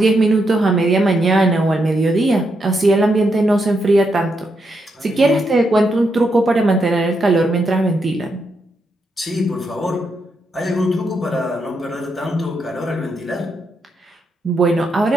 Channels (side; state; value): both; normal; correlation 0.81